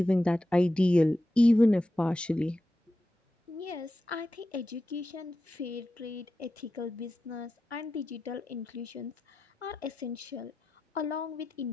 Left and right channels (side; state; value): both; normal; correlation 0.91